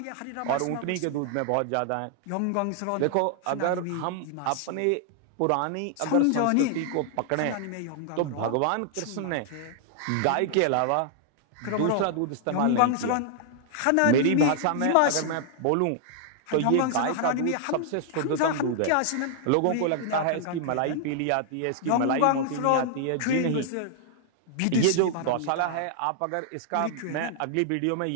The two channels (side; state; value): both; different; correlation 0.00